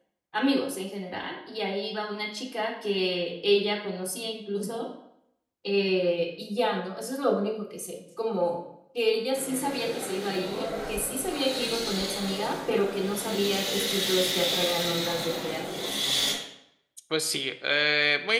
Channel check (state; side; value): identical; both; correlation 1.00